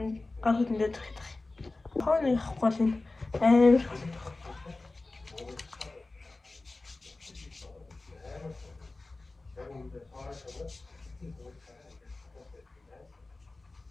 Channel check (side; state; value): right; quieter; 3.2 dB